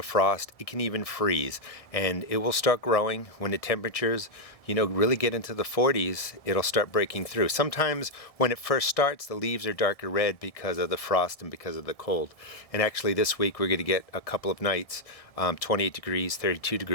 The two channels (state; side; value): late; right; 1.6 ms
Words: frost, it can even freeze, and it will start growing when the temperatures, really get into the 40s. It'll start breaking through. Sometimes when it first starts, the leaves are darker red because of the frost and because of the cold. And actually this week we're going to get a couple of nights, 28 degrees, 32